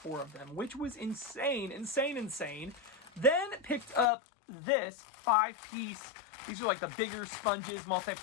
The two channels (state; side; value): drops out; right; at 4.1 s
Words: of them, which was insane, insane. Then picked up this 5-piece. These are like the bigger sponges,